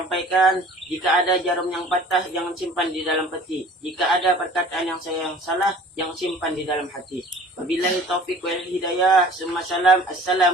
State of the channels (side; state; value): both; normal; correlation 0.47